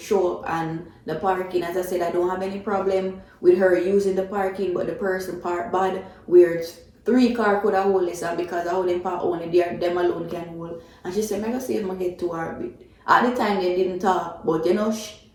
show up, and the parking, as I said, I don't have any problem with her using the parking, but the person parked bad, where 3 cars could have hold this, and because I wouldn't park only there, them alone can hold. And she said, I'm going to see if I get to her. At the time, they didn't talk, but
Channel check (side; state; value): both; identical; correlation 1.00